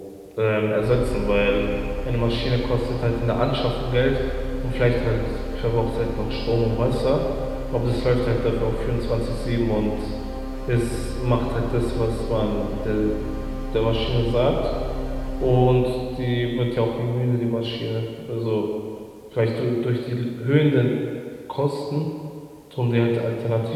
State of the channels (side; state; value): both; identical; correlation 1.00